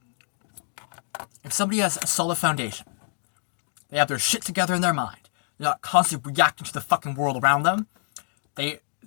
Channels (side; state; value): right; silent; digital silence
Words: somebody has a solid foundation, they have their shit together in their mind, they're not constantly reacting to the fucking world around them, they